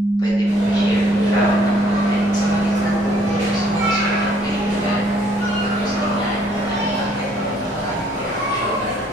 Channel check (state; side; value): normal; both; correlation 0.63